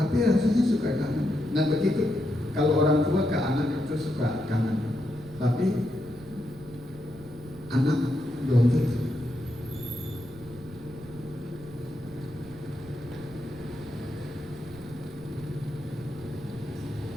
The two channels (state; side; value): noise; right; rumble, 18 dB below the sound